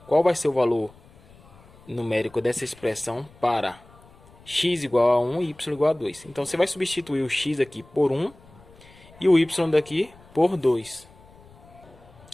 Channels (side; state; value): left; noise; rumble, 25 dB below the sound